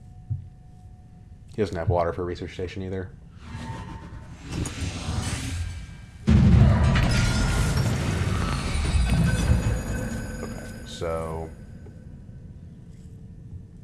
He doesn't have water for a research station either. Okay, so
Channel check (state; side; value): identical; both; correlation 1.00